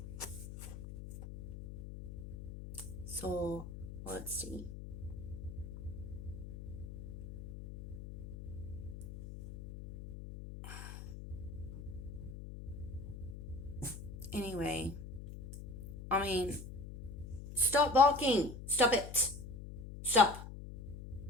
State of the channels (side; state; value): left; noise; hum, 11 dB below the sound